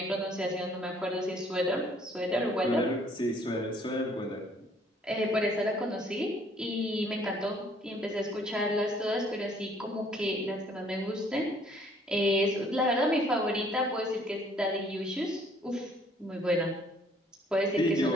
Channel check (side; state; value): both; normal; correlation 0.61